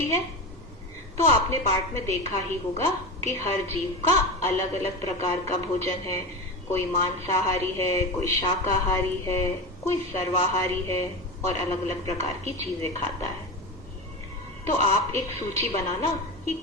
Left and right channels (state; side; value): normal; both; correlation 0.24